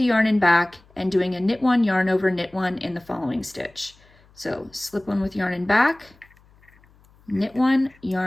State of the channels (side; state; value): left; noise; hum, 30 dB below the sound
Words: yarn in back and doing a knit one, yarn over, knit one in the following stitch. So slip one with yarn in back, knit one,